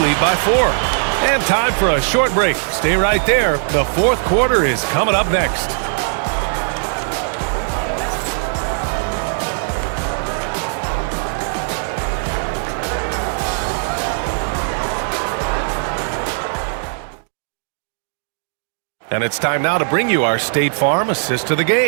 by 4. And time for a short break. Stay right there. The fourth quarter is coming up next. And it's time now to bring you our State Farm assist to the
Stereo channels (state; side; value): silent; left; digital silence